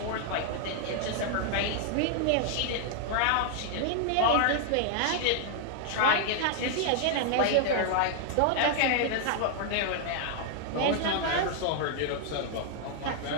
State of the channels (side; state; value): both; different; correlation 0.00